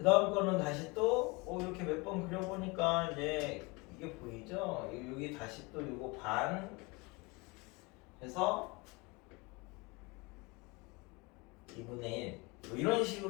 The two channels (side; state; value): right; quieter; 26.2 dB